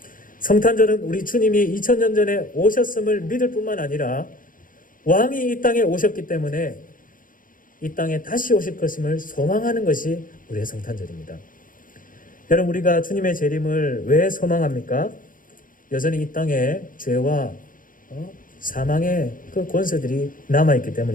성탄절은 우리 주님이 2000년 전에 오셨음을 믿을 뿐만 아니라 왕이 이 땅에 오셨기 때문에 이 땅에 다시 오실 것임을 소망하는 것이 우리의 성탄절입니다. 여러분, 우리가 주님의 재림을 왜 소망합니까? 여전히 이 땅에 죄와 사망의 그 권세들이 남아있기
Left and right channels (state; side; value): late; right; 0.40 ms